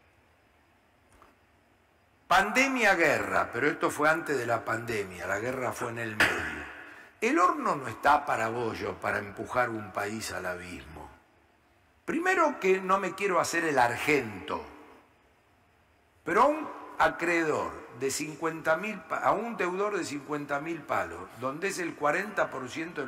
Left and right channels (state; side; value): identical; both; correlation 1.00